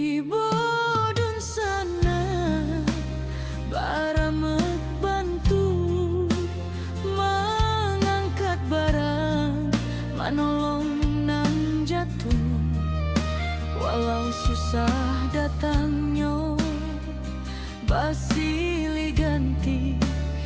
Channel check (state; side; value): identical; both; correlation 1.00